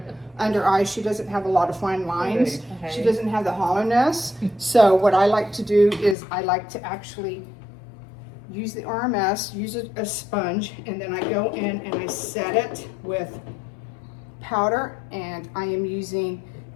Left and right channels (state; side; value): drops out; right; at 6.2 s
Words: under eyes. She doesn't have a lot of fine lines. Okay. She doesn't have the hollowness. So what I like to do is I like to actually use the RMS, use a sponge, and then I go in and I set it with powder, and I am using